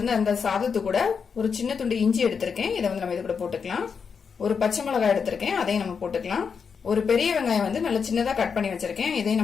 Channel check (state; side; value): quieter; right; 6.1 dB